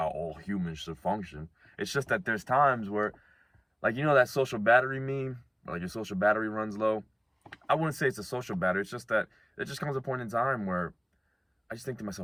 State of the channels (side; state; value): both; identical; correlation 1.00